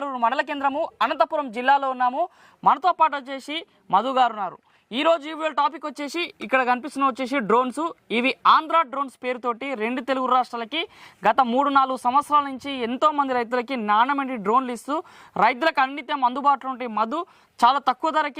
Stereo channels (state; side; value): identical; both; correlation 1.00